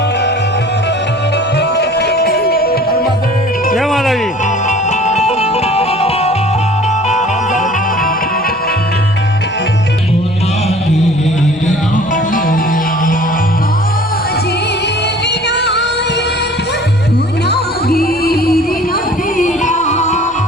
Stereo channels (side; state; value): both; normal; correlation 0.49